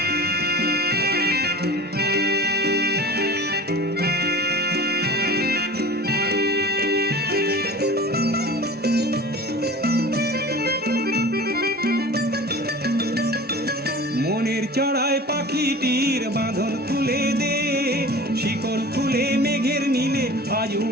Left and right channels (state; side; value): normal; both; correlation 0.38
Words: মনের চড়ায় পাখিটির বাঁধন খুলে দে, শিকল খুলে মেঘের নীলে আজ